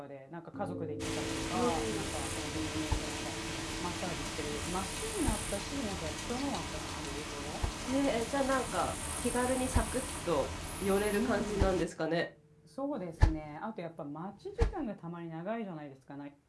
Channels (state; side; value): identical; both; correlation 1.00